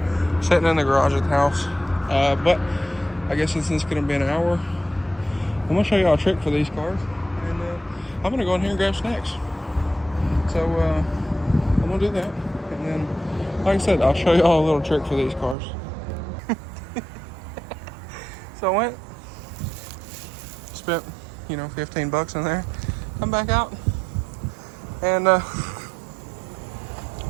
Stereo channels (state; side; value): drops out; left; at 15.6 s